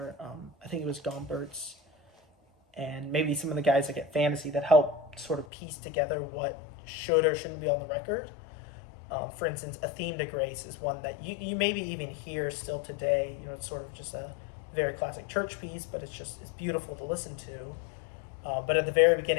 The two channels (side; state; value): right; drops out; at 5.5 s